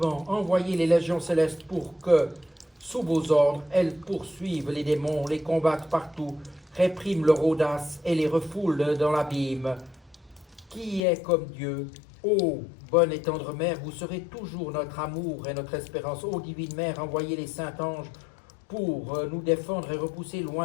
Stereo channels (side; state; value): right; drops out; at 11.0 s